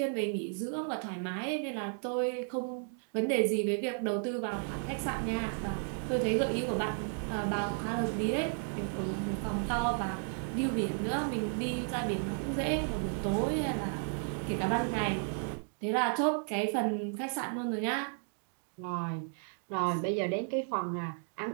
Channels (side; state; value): left; silent; 55 dB below the other